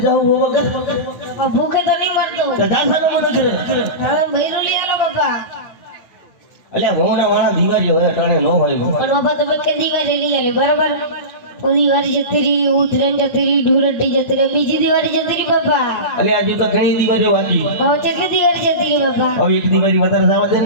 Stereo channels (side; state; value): right; late; 9.4 ms